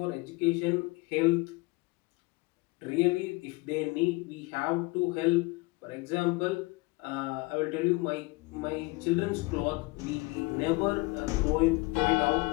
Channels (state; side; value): quieter; right; 24.1 dB